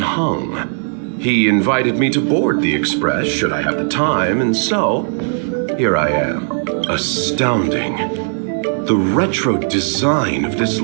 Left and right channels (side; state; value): left; silent; 58 dB below the other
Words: He invited me to board the Express should I have the time, and so here I am. Astounding. The retro design of this